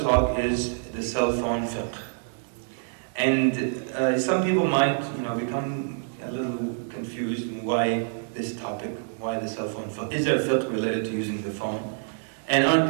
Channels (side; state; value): left; silent; digital silence